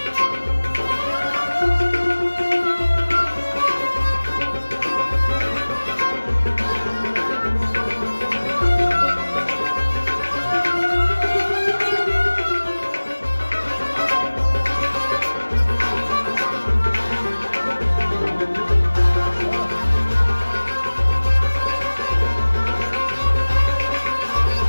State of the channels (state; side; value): inverted; both; correlation -1.00